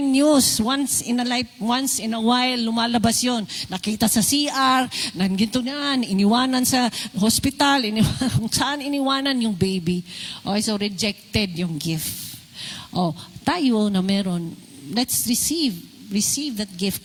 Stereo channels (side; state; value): both; identical; correlation 1.00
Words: news. Once in a while, lumalabas yon. Nakita sa CR, nandito na, iniwanan sa hospital, kung saan iniwanan yung baby. Okay, so rejected yung gift. Oh, tayo na meron, let's receive that gift.